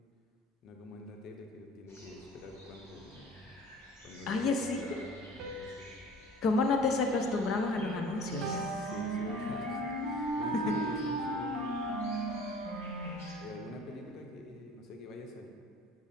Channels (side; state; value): both; normal; correlation 0.46